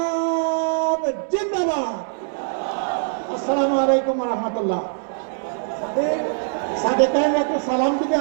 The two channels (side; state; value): left; silent; digital silence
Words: জিন্দাবাদ। আসসালামু আলাইকুম ওয়া রাহমাতুল্লাহ। সাথে একটু সালাম দিবে